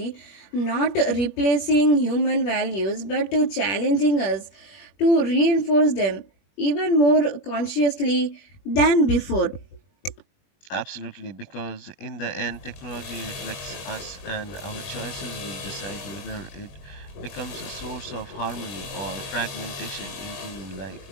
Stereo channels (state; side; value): late; right; 21 ms